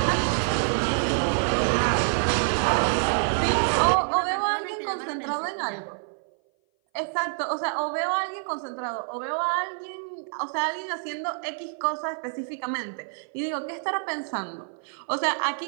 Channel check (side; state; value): left; silent; 57 dB below the other